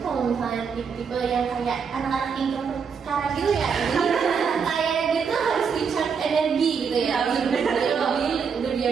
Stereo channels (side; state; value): left; quieter; 6.2 dB